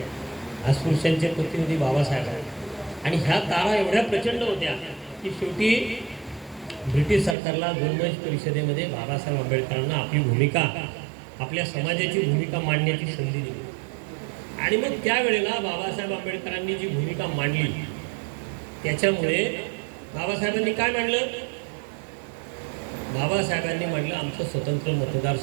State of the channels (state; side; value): drops out; left; at 7.4 s